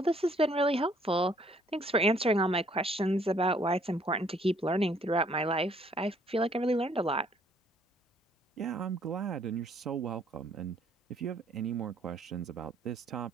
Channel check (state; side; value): normal; both; correlation 0.63